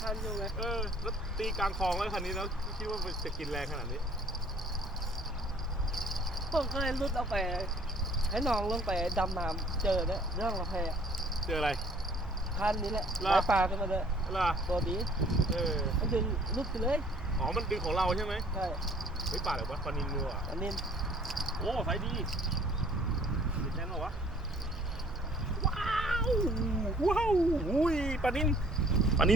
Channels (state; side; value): normal; both; correlation 0.55